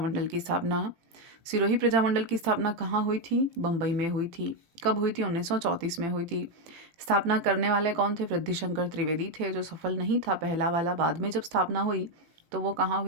की स्थापना। सिरोही प्रजामंडल की स्थापना कहाँ हुई थी? बम्बई में हुई थी। कब हुई थी? 1934 में हुई थी। स्थापना करने वाले कौन थे? वृद्धिशंकर त्रिवेदी थे, जो सफल नहीं था पहला वाला। बाद में जब स्थापना हुई तो वो कहाँ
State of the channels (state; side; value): late; left; 18 ms